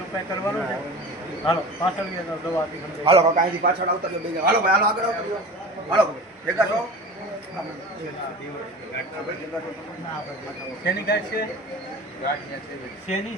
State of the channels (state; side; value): normal; both; correlation 0.35